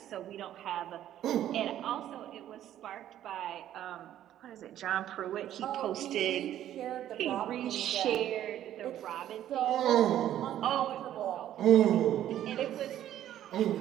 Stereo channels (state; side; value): quieter; left; 11.8 dB